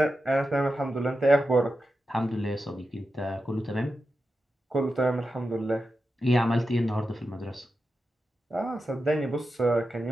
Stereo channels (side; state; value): both; normal; correlation 0.90